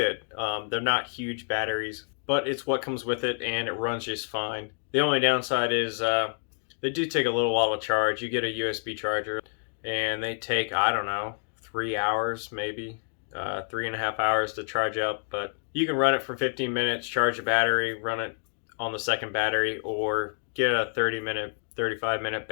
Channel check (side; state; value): right; silent; 59 dB below the other